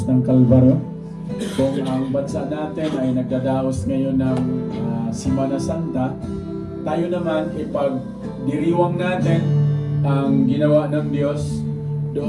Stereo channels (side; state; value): both; identical; correlation 1.00